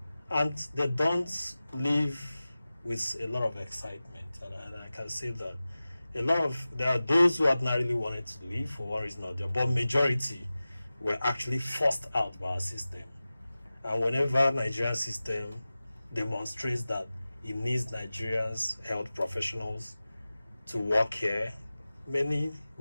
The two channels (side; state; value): both; inverted; correlation -0.96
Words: And they don't leave with a lot of excitement. And I can say that there are those who ordinarily wanted to leave for one reason or the other, but majority were actually forced out by our system. And whenever Nigerian system demonstrates that it needs Nigerians health professionals to work here, many